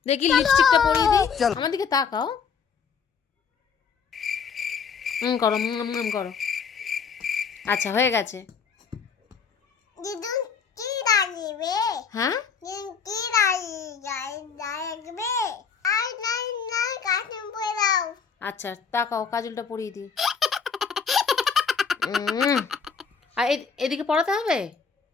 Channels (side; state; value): right; quieter; 6.2 dB